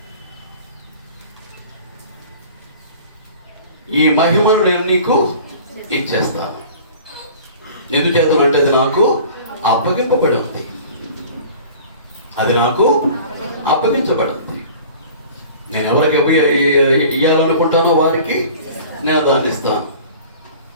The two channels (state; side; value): inverted; both; correlation -0.44